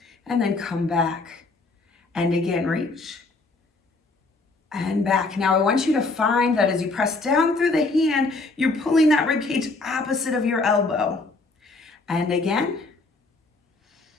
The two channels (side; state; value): right; quieter; 3.5 dB